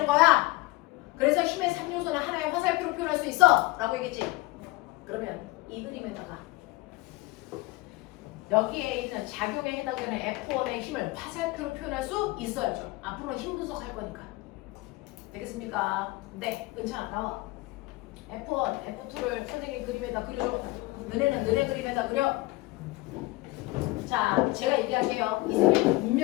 거야. 그래서 힘의 3요소는 하나의 화살표로 표현할 수 있어 라고 얘기했지. 그러면 이 그림에다가 여기에 있는 작용에 해당되는 F1의 힘을 화살표로 표현할 수 있어야죠. 앞으로 힘 분석할 거니까. 되겠습니까? 네, 은찬아 나와. F1, F2를 선생님 그림에다 그려줘. 너네는 너네 그림에다 그려. 자, 제가 얘기할게요. 이 그림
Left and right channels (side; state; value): right; quieter; 21.1 dB